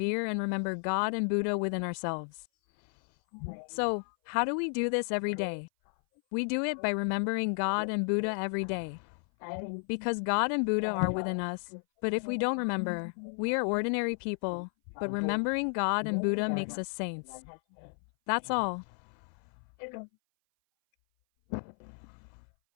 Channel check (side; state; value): right; silent; 56 dB below the other